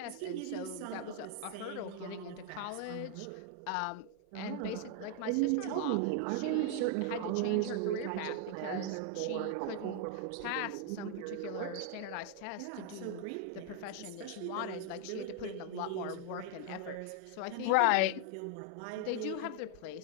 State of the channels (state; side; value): different; both; correlation 0.00